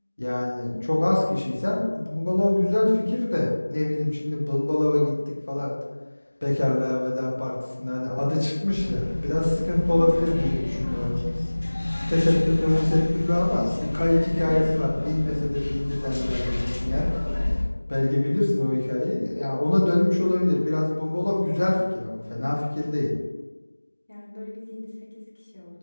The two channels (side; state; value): both; inverted; correlation -1.00